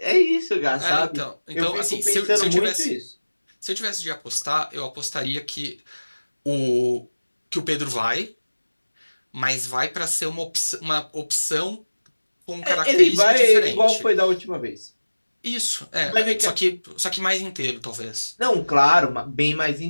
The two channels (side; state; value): both; inverted; correlation -1.00